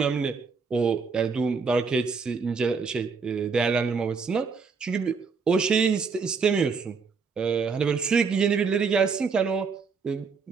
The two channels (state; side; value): quieter; left; 5.2 dB